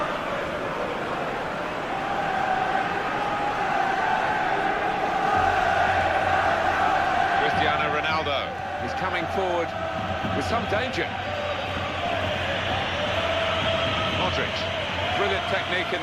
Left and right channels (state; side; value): identical; both; correlation 1.00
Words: He's coming forward with some danger. Modric, brilliant technique in